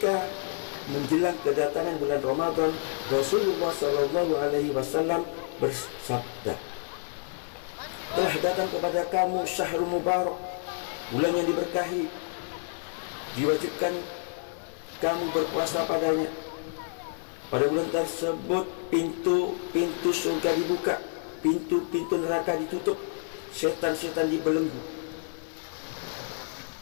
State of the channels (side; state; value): right; silent; 59 dB below the other